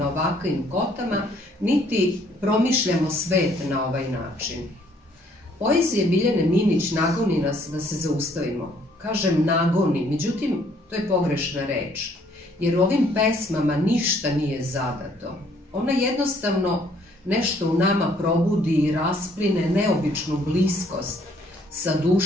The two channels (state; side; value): normal; both; correlation 0.64